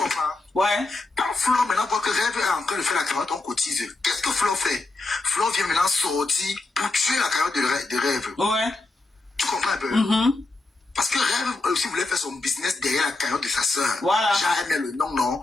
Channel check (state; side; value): quieter; right; 3.2 dB